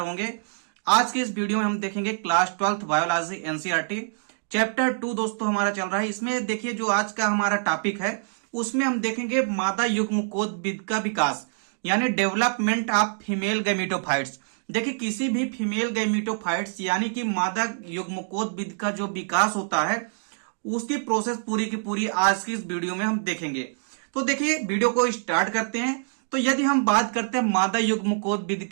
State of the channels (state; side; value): silent; left; digital silence